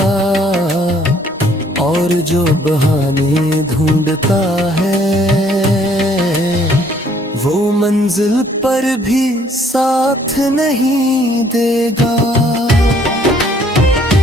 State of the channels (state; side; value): normal; both; correlation 0.62